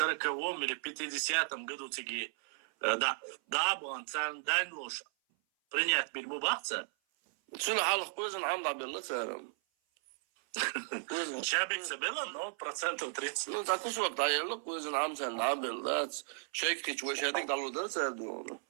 или 50-м году тиги да был цан данлош принять бильбубахца. شنو حالك كويزن عم بالله سارم Чабик забила, но процентов 30. Ну так уж вот даёло كويزن عم سان بالله شيك كيش وش هذيك دالو ده سادو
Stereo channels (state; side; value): silent; left; 54 dB below the other